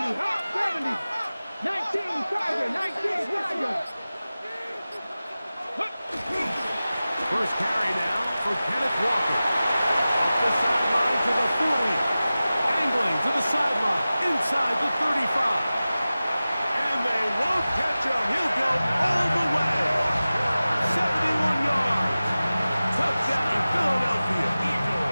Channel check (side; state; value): both; inverted; correlation -0.96